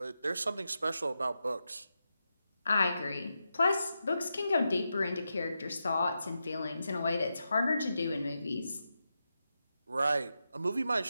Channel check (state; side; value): inverted; both; correlation -0.88